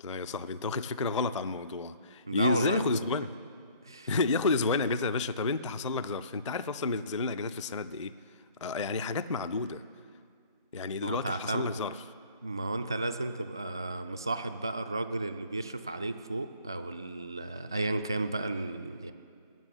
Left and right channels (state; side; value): inverted; both; correlation -0.54